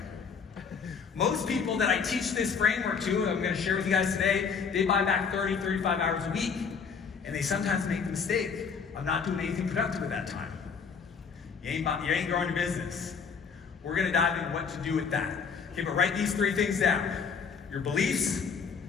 Most people that I teach this framework to, and I'm going to share with you guys today, they buy back 30, 35 hours a week. And they sometimes make the mistake of not doing anything productive at that time. You ain't growing your business. We're going to dive into what to do with that. Okay, but write these 3 things down. Your beliefs.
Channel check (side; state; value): right; quieter; 5.9 dB